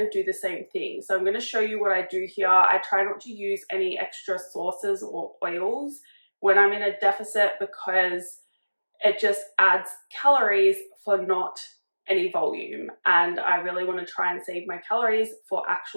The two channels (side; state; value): both; inverted; correlation -1.00